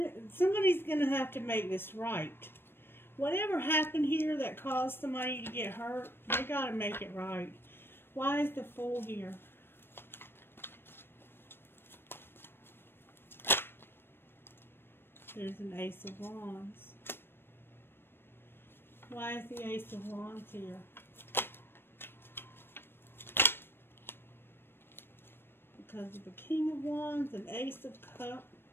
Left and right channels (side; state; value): right; late; 0.10 ms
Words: somebody's going to have to make this right. Whatever happened here that caused somebody to get hurt, they got to make it right. Why is the Fool here? There's an Ace of Wands. Why is the Ace of Wands here? Because of the King of Wands and Ace of